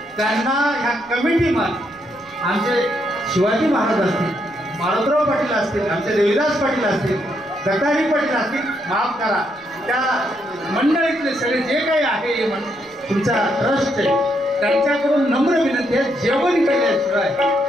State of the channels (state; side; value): noise; left; rumble, 29 dB below the sound